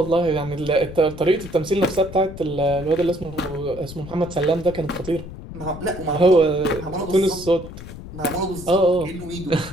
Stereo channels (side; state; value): left; noise; rumble, 13 dB below the sound